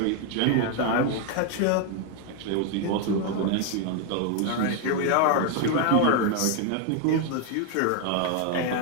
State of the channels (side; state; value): both; different; correlation 0.01